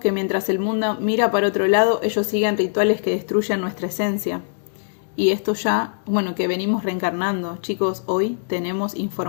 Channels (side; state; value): right; silent; 64 dB below the other